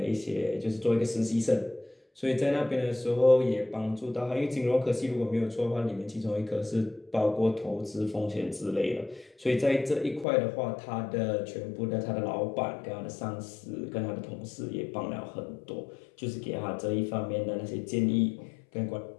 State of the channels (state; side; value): drops out; right; at 10.2 s